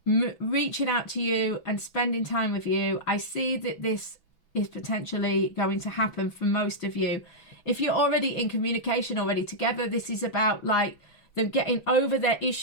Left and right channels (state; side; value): late; right; 6.0 ms